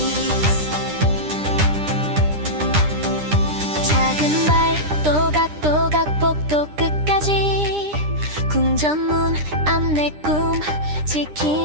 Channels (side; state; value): left; late; 9.9 ms